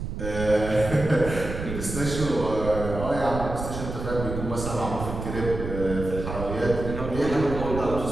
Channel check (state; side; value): noise; right; rumble, 6 dB below the sound